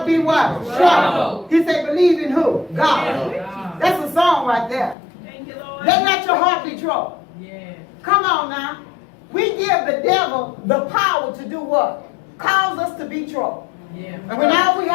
be what? Troubled. He said, believe in who? God. That's a song right there. Let not your heart be troubled. Come on now. We give the devil the power to do what? cause us to be trouble. And when all we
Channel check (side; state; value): right; drops out; at 5.0 s